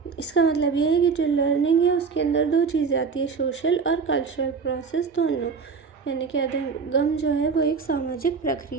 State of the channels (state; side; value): quieter; left; 5.3 dB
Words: इसका मतलब ये है कि जो लर्निंग है उसके अंदर 2 चीज़ें आती है, सोशल और कल्चरल प्रोसेस दोनों, यानी कि अधिगम जो है वो एक सामाजिक